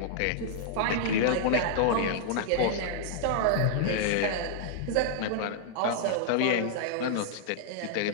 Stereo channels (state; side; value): different; both; correlation -0.01